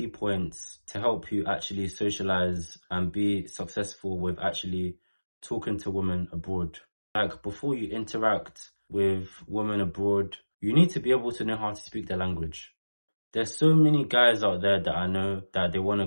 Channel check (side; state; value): both; inverted; correlation -1.00